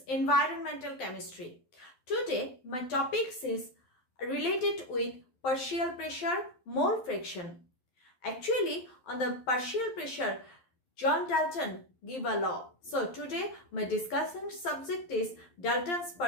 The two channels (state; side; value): late; right; 12 ms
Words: chemistry. Today my topics is related with partial pressure, mole fraction. Actually, on the partial pressure, John Dalton gave a law. So today my discussion subject is Dalton's